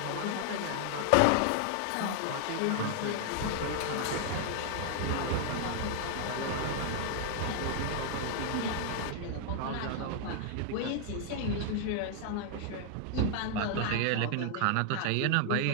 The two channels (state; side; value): different; both; correlation 0.00